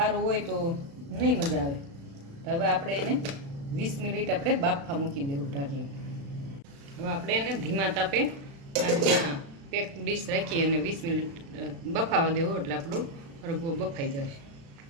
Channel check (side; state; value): left; late; 36 ms